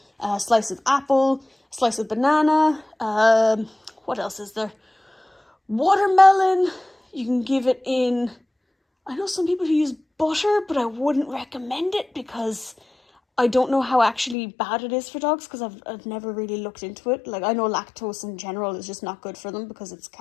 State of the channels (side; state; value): right; drops out; at 14.4 s